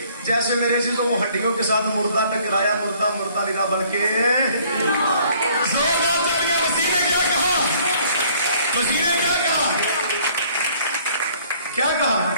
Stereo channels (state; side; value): inverted; both; correlation -0.59